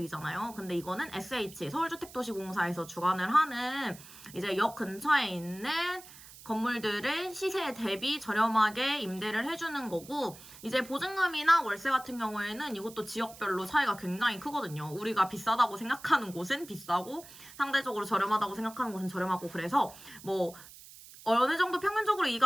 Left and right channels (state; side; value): noise; right; hiss, 18 dB below the sound